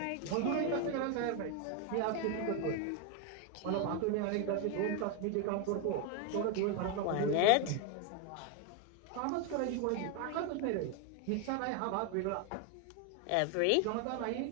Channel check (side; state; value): both; different; correlation 0.01